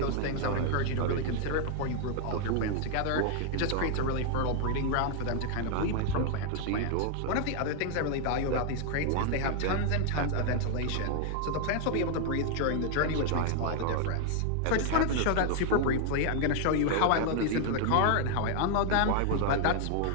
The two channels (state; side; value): different; both; correlation 0.00